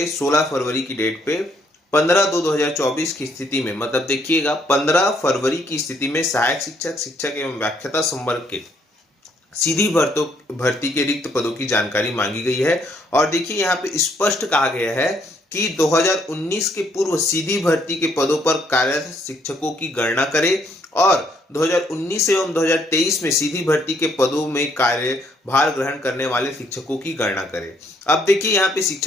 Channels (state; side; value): normal; both; correlation 0.69